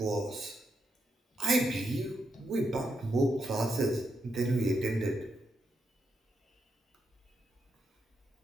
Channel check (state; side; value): normal; both; correlation 0.82